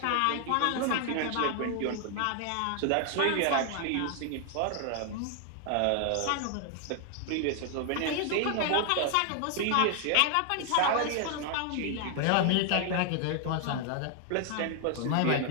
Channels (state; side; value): different; both; correlation 0.00